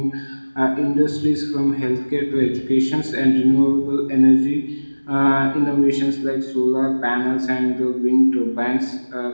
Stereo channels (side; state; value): both; inverted; correlation -1.00